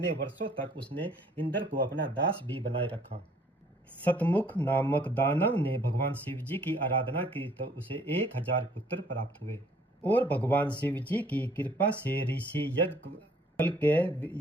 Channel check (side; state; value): both; normal; correlation 0.59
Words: वर्षों तक उसने इंद्र को अपना दास भी बनाए रखा। सतमुख नामक दानव ने भगवान शिव जी की आराधना की तो उसे 1000 पुत्र प्राप्त हुए और भगवान शिव जी की कृपा से ऋषि यज्ञ कल के